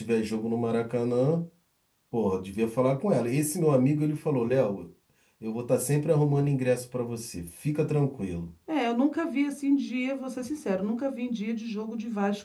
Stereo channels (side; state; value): both; identical; correlation 1.00